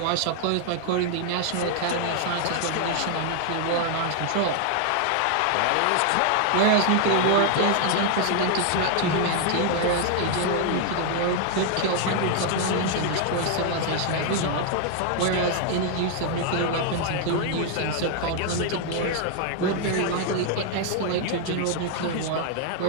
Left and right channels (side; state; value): both; different; correlation 0.00